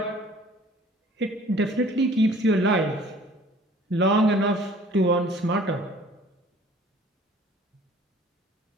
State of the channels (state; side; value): normal; both; correlation 0.51